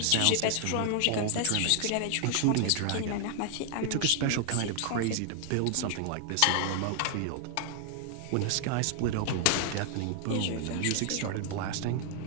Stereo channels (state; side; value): different; both; correlation 0.00